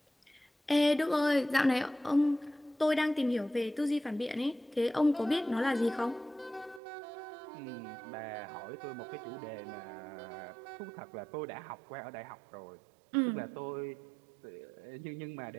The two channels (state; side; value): drops out; left; at 6.8 s